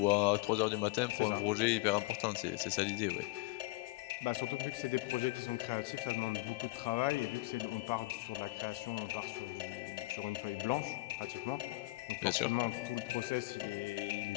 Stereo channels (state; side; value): quieter; right; 21.2 dB